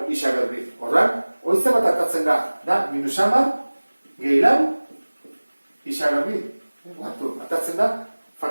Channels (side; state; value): both; inverted; correlation -1.00